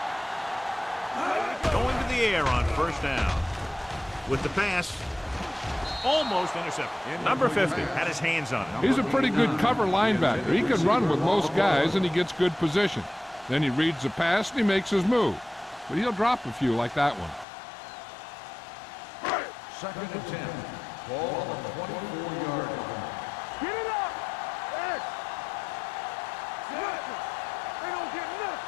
go. Going to the air on 1st down. With the pass, almost intercepted. Number 50 had his hands on it. He's a pretty good cover linebacker. He can run with most guys, and he gets good position. Then he reads the pass, and he makes his move. But he'll drop a few like that one. Second and 10. Ball on the 24-yard line. Get it up! X! Nothing! They don't get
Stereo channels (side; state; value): right; drops out; at 17.4 s